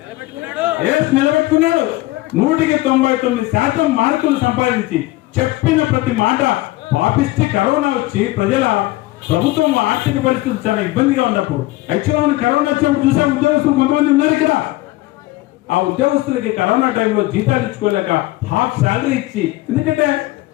నిలబెట్టుకున్నాడు. 199% మార్కులు సంపాదించి చెప్పిన ప్రతి మాట పాపిస్తే కరోనా వచ్చి ప్రభుత్వం ఆర్థిక పరిస్థితి చాలా ఇబ్బందిగా ఉన్నప్పుడు, యాక్చువల్గా మనం కరోనా వచ్చినప్పుడు చూసే ఉద్యోగస్తులు కొంతమంది ఉన్నారు ఇక్కడ. ఆ ఉద్యోగస్తులకి కరోనా టైంలో జీతాలు ఇచ్చుకోలేక హాఫ్ శాలరీ ఇచ్చి, ఎందుకంటే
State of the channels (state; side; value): quieter; right; 18.5 dB